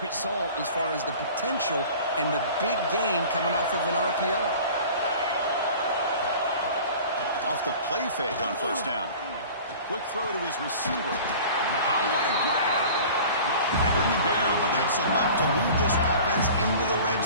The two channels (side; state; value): both; inverted; correlation -0.42